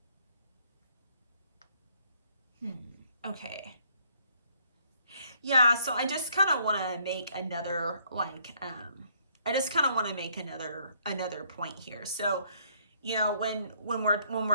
Okay. Yeah, so I just kind of want to make another another point here. So, when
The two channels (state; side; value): inverted; both; correlation -0.67